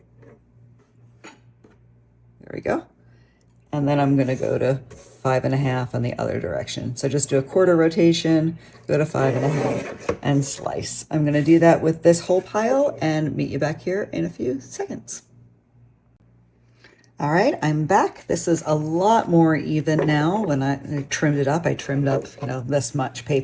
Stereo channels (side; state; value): both; identical; correlation 1.00